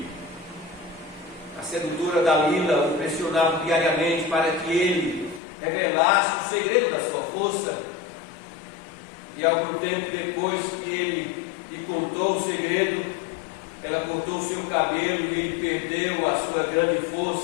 A sedutora Dalila o pressionava diariamente para que ele revelasse o segredo da sua força. E algum tempo depois que ele lhe contou o segredo, ela cortou o seu cabelo e ele perdeu a sua grande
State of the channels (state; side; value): drops out; right; at 5.4 s